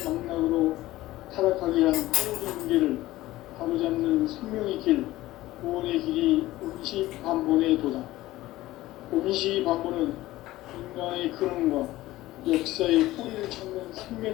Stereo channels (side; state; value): right; quieter; 16.8 dB